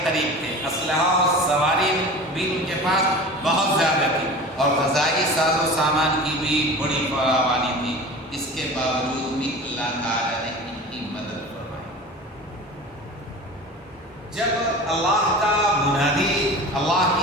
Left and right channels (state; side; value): normal; both; correlation 0.36